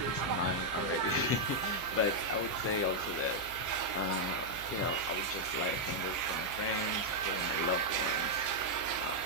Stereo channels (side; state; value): right; noise; hum, 17 dB below the sound